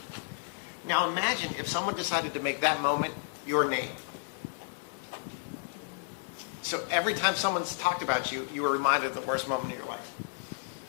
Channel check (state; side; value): silent; right; digital silence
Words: Now imagine if someone decided to make that moment your name. So every time someone's talked about you, you were reminded of the worst moment of your life.